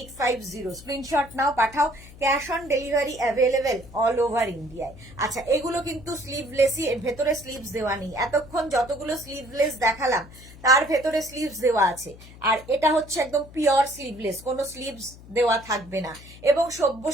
স্ক্রিনশট নাও, পাঠাও। Cash on delivery available all over ইন্ডিয়ায়। আচ্ছা, এগুলো কিন্তু স্লিভলেসই, এর ভেতরে স্লিভস দেওয়া নেই। এতক্ষণ যতগুলো স্লিভলেস দেখালাম তার ভেতরে স্লিভস দেওয়া আছে, আর এটা হচ্ছে একদম পিওর স্লিভলেস, কোনো স্লিভস দেওয়া থাকবে না। এবং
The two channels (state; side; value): noise; left; hum, 19 dB below the sound